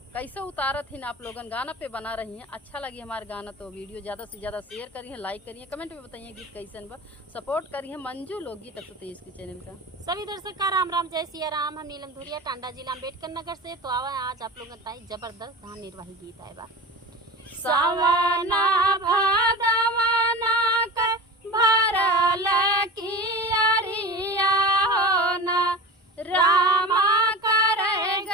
कैसे उतारत ही आप लोगन गाना पे बना रही हैं। अच्छा लगी हमारे गाना तो वीडियो ज़्यादा से ज़्यादा शेयर करिए, लाइक करिए, कमेंट में बताइए गीत कैसन बा। सपोर्ट करिए मंजू लोकगीत 123 के चैनल का। सभी दर्शक का राम राम, जय सिया राम। हम नीलम धुरिया, टांडा जिला अम्बेडकर नगर से। तो आवा आज आप लोगों का जबरदस्त धान निर्वाही गीत आए बा। सवना भादवना के भरल कियरिया होना रामा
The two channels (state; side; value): normal; both; correlation 0.31